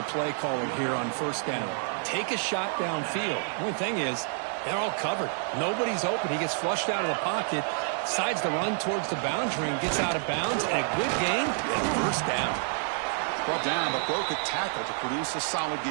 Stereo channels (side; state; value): left; silent; 56 dB below the other